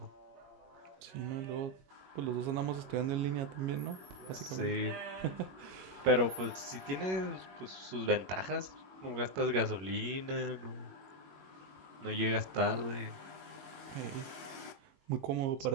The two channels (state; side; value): late; left; 21 ms